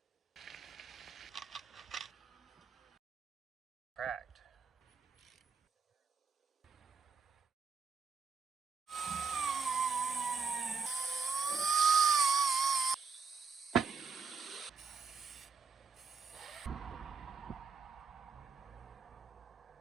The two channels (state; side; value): quieter; left; 5.5 dB